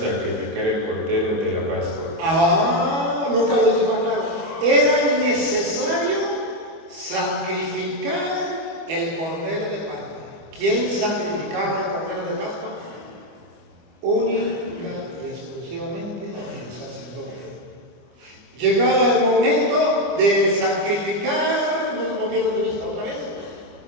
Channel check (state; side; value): late; left; 25 ms